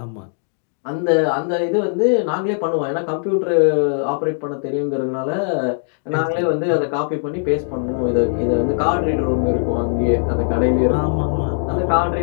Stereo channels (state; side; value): silent; right; digital silence